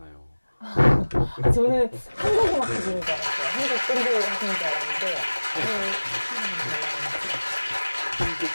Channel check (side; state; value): both; inverted; correlation -1.00